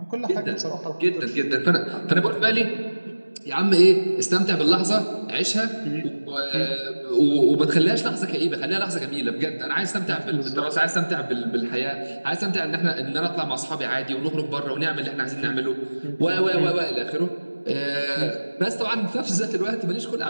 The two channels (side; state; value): both; inverted; correlation -1.00